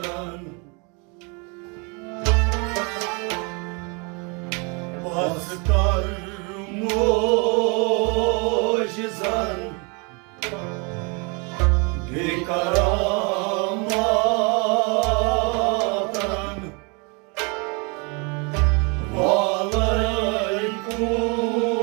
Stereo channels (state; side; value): quieter; left; 32.2 dB